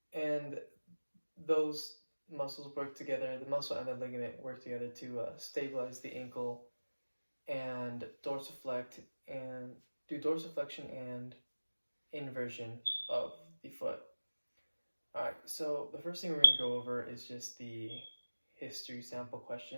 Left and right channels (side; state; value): both; inverted; correlation -1.00